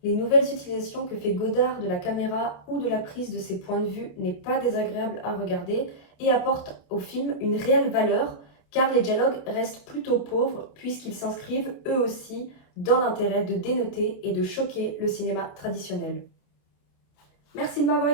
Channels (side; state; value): right; late; 28 ms